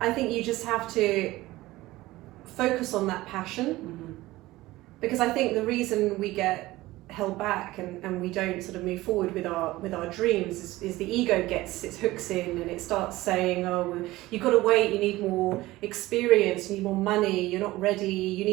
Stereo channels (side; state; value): left; quieter; 18.1 dB